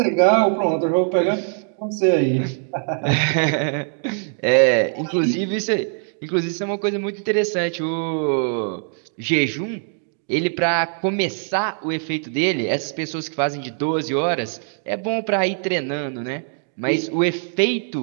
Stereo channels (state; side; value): silent; left; 58 dB below the other